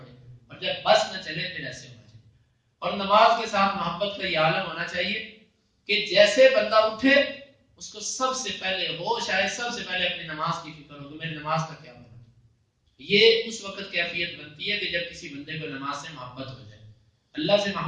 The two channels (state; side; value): identical; both; correlation 1.00